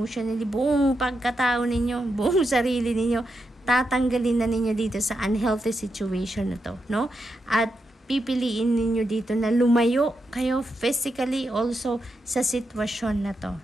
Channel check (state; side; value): normal; both; correlation 0.85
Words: buong pagkatao ninyo, buong sarili ninyo, tatanggalin na ninyo dito sa unhealthy situation na to, no? At pipiliin ninyo dito na lumayo kayo physically also sa sitwasyon na to,